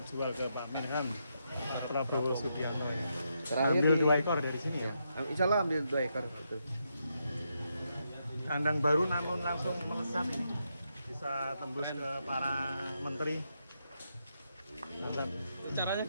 ke Pak Menhan Prabowo Subianto. Terakhir Ambil di- 2 ekor dari sini ya. Insya Allah ambil 2 ekor. Betul. Kandang baru namun langsung melesat ini. Bisa tembus ke para menteri. Mantap. Caranya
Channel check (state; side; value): inverted; both; correlation -0.81